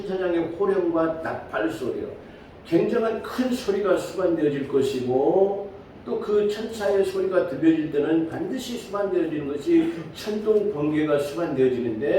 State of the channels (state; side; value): identical; both; correlation 1.00